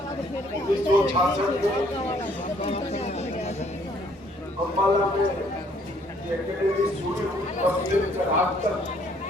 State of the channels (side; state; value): both; normal; correlation 0.64